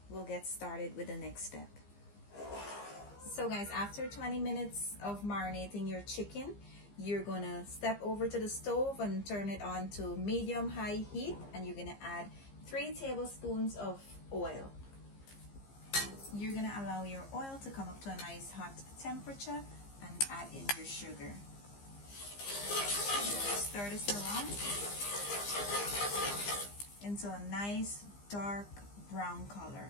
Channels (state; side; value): late; right; 15 ms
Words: we'll get started with the next step. So guys, after 20 minutes of marinating your chicken, you're going to step over to the stove and turn it on to medium-high heat, and you're going to add 3 tablespoons of oil. You're going to allow your oil to come up to a nice hot temperature and add in your sugar. Stir this around into a nice dark brown color.